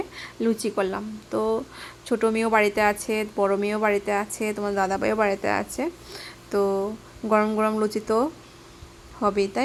লুচি করলাম। তো ছোটো মেয়েও বাড়িতে আছে, বড় মেয়েও বাড়িতে আছে, তোমার দাদাভাইও বাড়িতে আছে। তো গরম গরম লুচি তো হবেই,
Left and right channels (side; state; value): both; identical; correlation 1.00